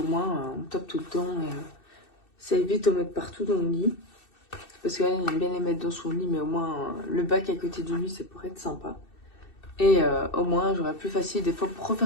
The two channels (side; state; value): right; late; 2.6 ms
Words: moins on tape tout le temps. Et, ça évite de mettre partout dans le lit. Parce qu'elle aime bien les mettre dans son lit, mais au moins le bac à côté du lit, ça pourrait être sympa. Et au moins, j'aurais plus facile des fois pour